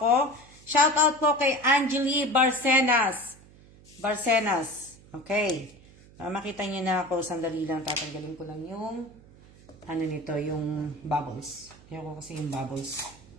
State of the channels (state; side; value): noise; right; hum, 24 dB below the sound